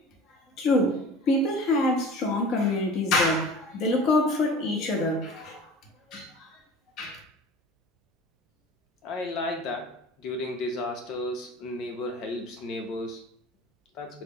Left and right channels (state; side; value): normal; both; correlation 0.41